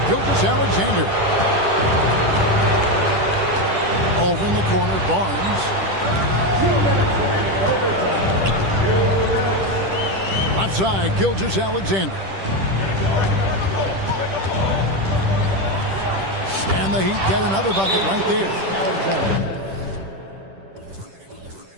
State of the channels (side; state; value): left; late; 10 ms